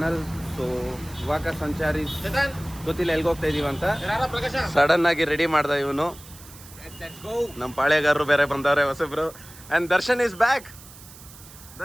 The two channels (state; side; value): noise; right; hiss, 19 dB below the sound